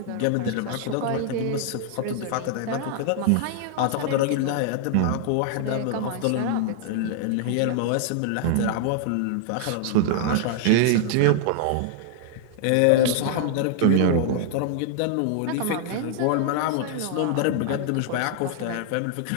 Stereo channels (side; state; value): both; different; correlation 0.00